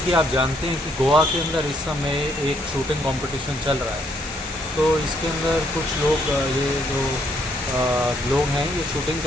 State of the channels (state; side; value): normal; both; correlation 0.71